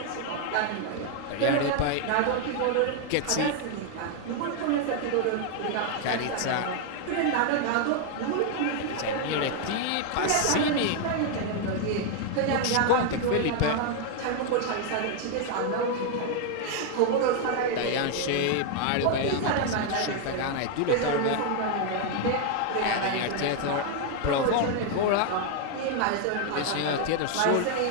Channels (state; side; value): different; both; correlation 0.00